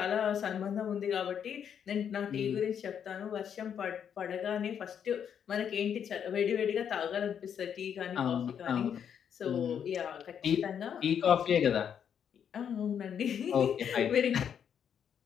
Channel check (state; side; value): quieter; right; 8.2 dB